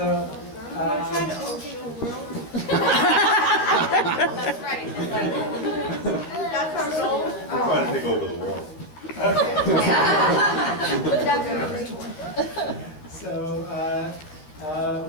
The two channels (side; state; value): right; late; 13 ms